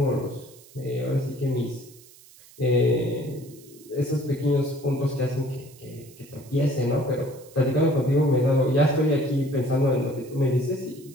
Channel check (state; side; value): noise; right; hiss, 23 dB below the sound